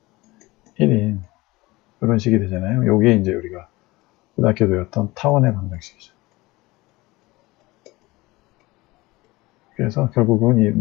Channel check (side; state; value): right; quieter; 21.0 dB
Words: 1인 이런 식이 되잖아요. 요게 이제 우리가 고등학교 배웠던 타원의 방정식이죠. 그래서 결국은 이